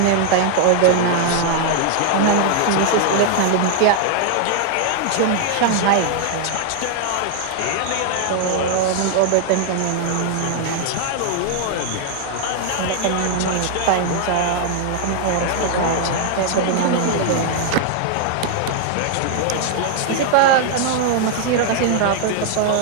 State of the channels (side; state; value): both; different; correlation 0.00